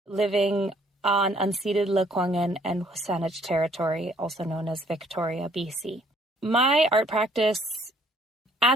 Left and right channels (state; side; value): normal; both; correlation 0.63